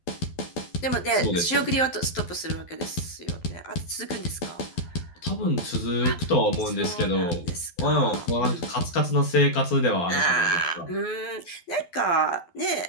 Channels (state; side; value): late; right; 12 ms